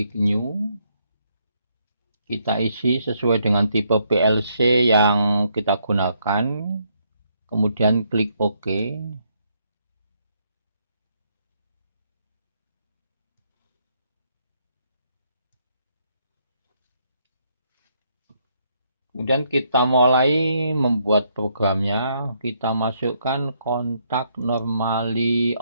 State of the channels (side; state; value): both; inverted; correlation -0.74